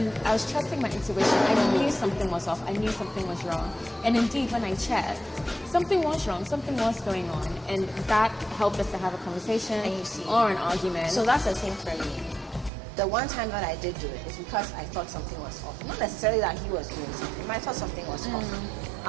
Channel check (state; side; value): drops out; left; at 12.7 s